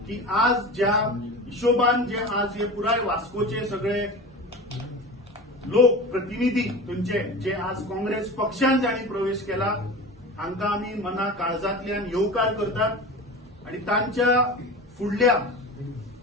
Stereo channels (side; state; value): both; normal; correlation 0.31